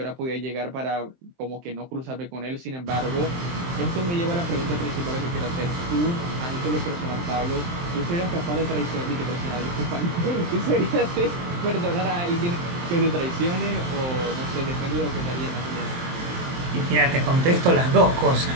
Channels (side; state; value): left; late; 23 ms